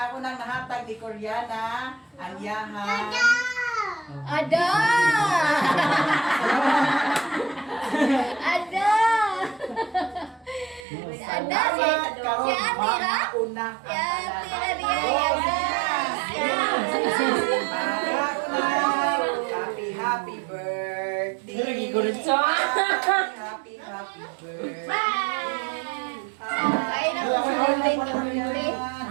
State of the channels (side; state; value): left; drops out; at 10.9 s